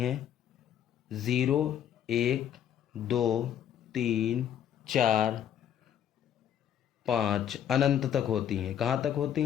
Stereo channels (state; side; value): quieter; right; 9.8 dB